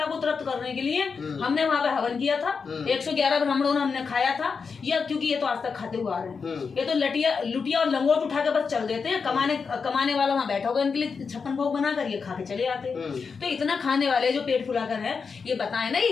को तृप्त करने के लिए हमने वहां पे हवन किया था, 111 ब्राह्मणों ने हमने खाया था, या क्योंकि ये तो आज तक खाते हुए आ रहे हैं। ये तो लुटिया और लंगोट उठा के बस चल देते हैं, कमाने वाला वहां बैठा होगा हवन के लिए 56 भोग बनाकर ये खा के चले आते हैं। तो इतना खाने वाले जो पेट फुलाकर है, ये बताएं ना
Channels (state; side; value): quieter; right; 5.4 dB